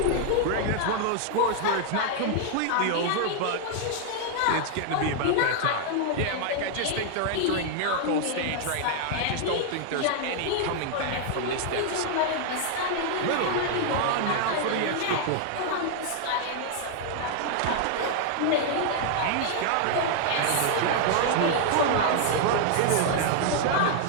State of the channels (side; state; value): both; different; correlation 0.00